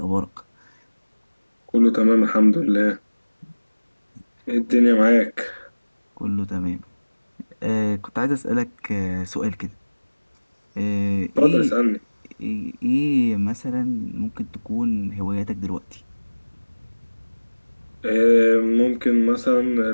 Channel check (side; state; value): both; inverted; correlation -1.00